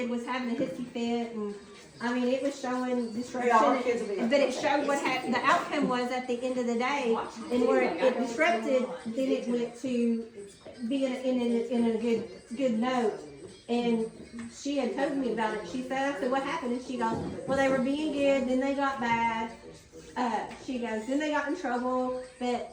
was having a hissy fit, and it was showing disruption. Yeah, our kids will be But it showed what happened. The outcome was at the end of the day, and where it disrupted, then it went to being in a good note. And she had told me about it. She said, I said, what happened? And she goes, well, they were being good, then they got bad. She goes, then they got in trouble, but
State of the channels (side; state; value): both; identical; correlation 1.00